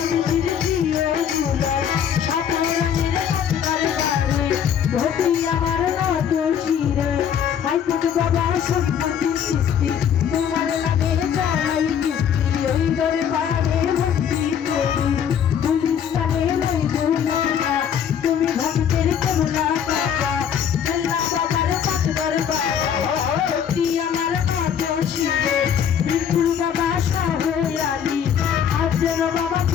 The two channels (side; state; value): right; quieter; 8.4 dB